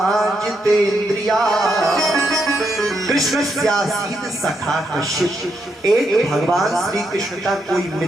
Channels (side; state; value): both; normal; correlation 0.80